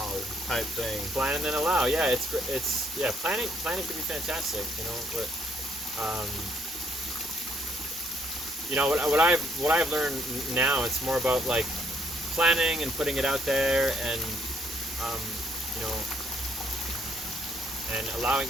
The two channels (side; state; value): both; normal; correlation 0.70